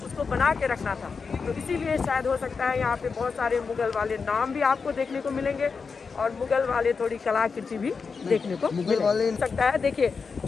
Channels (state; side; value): quieter; right; 5.2 dB